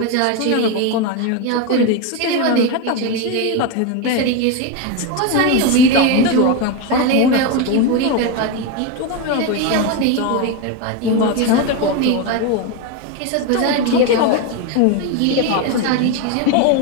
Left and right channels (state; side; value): different; both; correlation 0.03